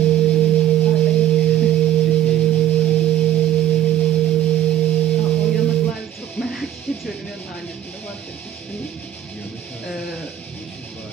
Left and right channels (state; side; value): quieter; left; 11.7 dB